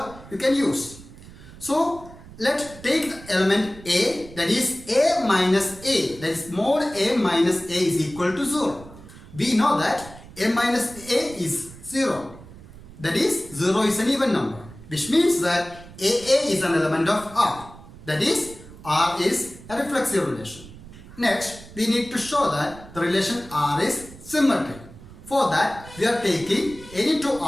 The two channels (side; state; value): right; noise; rumble, 18 dB below the sound